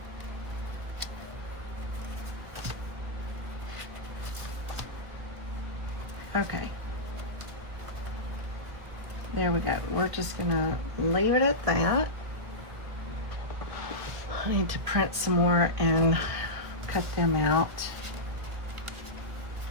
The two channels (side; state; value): left; late; 1.7 ms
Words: Okay. There we go. We're just gonna leave it at that. I need to print some more and cut them out.